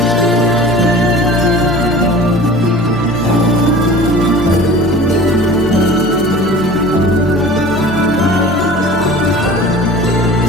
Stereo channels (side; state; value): both; normal; correlation 0.41